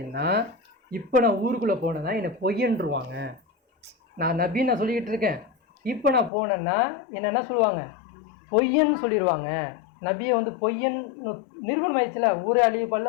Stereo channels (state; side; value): drops out; right; at 6.3 s